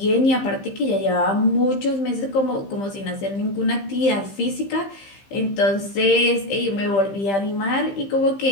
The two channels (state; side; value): late; right; 15 ms